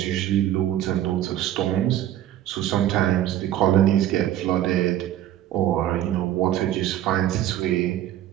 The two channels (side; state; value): left; quieter; 12.2 dB